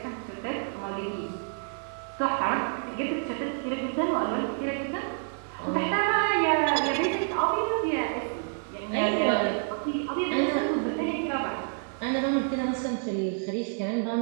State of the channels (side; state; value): left; silent; 59 dB below the other